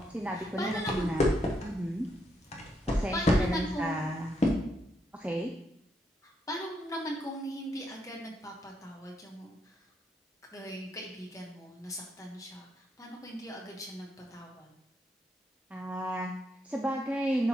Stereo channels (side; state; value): both; normal; correlation 0.78